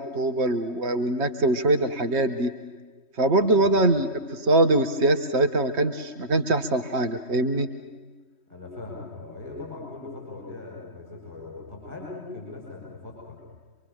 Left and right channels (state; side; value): late; left; 3.2 ms